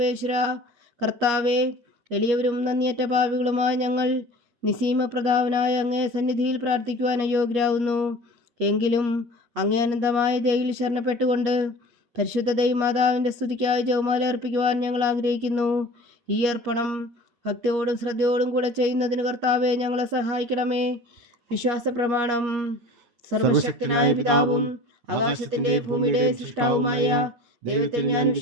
കർത്താവെ, എളിയവരും നന്ദിയറ്റ പാപികളുമായ ഞങ്ങൾ നിസീമ പ്രതാപനായ അങ്ങേ സന്നിധിയിൽ പ്രാർത്ഥിക്കുവാൻ അയോഗ്യരാകുന്നു. എങ്കിലും അങ്ങേ അനന്തമായ ദയയിൽ ശരണപ്പെട്ടുകൊണ്ട് പരിശുദ്ധ ദൈവമാതാവിൻ്റെ സ്തുതിക്കായി ജപമാല അർപ്പിക്കുവാൻ ഞങ്ങൾ ആഗ്രഹിക്കുന്നു. ഈ അർപ്പണം ഭക്തിയോടും ശ്രദ്ധയോടും കൂടെ ചെയ്യുന്നതിന് കർത്താവെ ഞങ്ങളെ സഹായിക്കണമേ. വിശ്വാസ പ്രമാണം. സർവശക്തനായ പിതാവും ആകാശത്തിന്റെ ഭൂമിയുടെ സൃഷ്ടാവുമായ ദൈവത്തിൽ ഞാൻ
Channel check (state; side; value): late; left; 8.4 ms